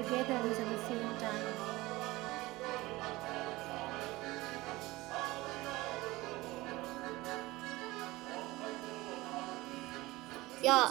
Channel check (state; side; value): quieter; left; 20.0 dB